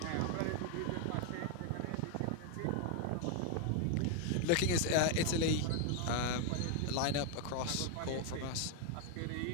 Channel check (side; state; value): both; different; correlation 0.00